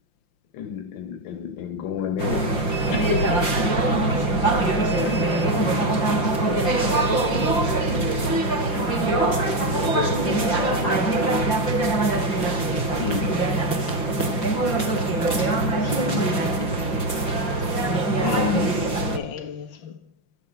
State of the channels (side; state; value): right; late; 5.7 ms